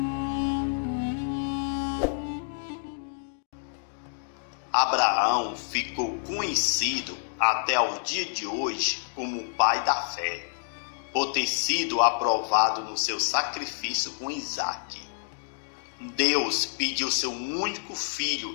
Abraão ficou conhecido até o dia de hoje como o pai da fé, por ter sido aprovado no seu sacrifício com Isaque. Deus pediu seu único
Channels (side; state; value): right; silent; digital silence